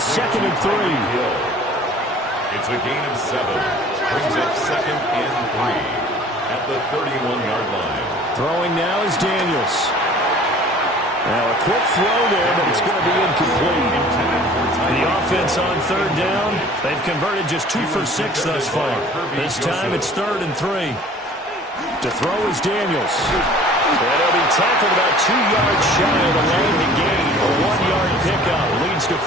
and 3. It's a gain of 7. Brings up 2nd and 3 at the 31-yard line. Throwing now is Daniels. Now a quick throw there, but it's going to be incomplete. The offense on 3rd down. They've converted just 2 for 6 thus far. This time it's 3rd and 3. To throw is Daniels. And he'll be tackled about 2 yards shy of the line to gain. A 1-yard pickup leads to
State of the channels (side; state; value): both; normal; correlation 0.49